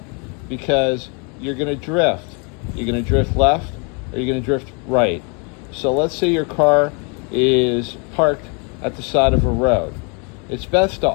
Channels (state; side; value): quieter; right; 34.8 dB